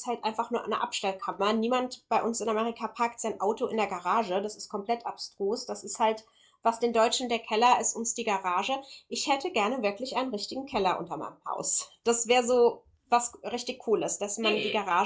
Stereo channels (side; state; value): both; identical; correlation 1.00